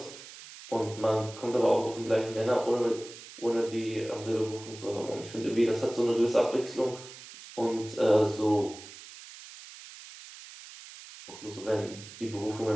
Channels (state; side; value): noise; right; hiss, 16 dB below the sound